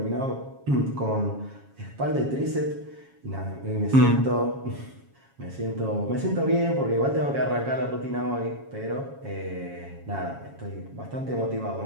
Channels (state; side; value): late; left; 7.3 ms